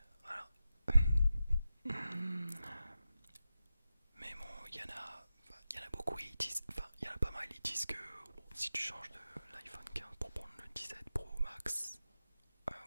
Voilà. Mais bon, il y en a beaucoup, il y en a pas mal, ils disent que bon, si tu changes de l'iPhone 15 pour prendre le 17 Pro Max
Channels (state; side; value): inverted; both; correlation -0.91